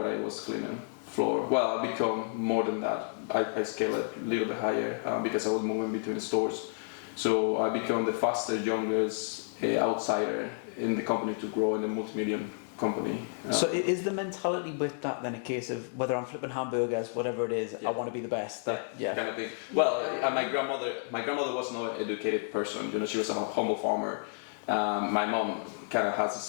I was cleaning floor. Well, I become more than that. I scaled it a little bit higher because I was moving between stores. So I became the fastest, youngest outsider in the company to grow in a multi-million company. So is the mentality with that then a case of whether I'm flipping hamburgers, whatever it is, I want to be the best? Kind of thing. Well, my grandmother was not an educated person. She was a humble farmer. My mom kind of has the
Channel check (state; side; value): silent; right; digital silence